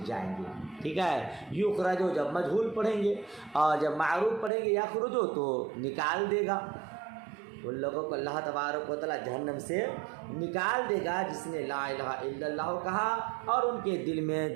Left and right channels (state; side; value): drops out; left; at 4.5 s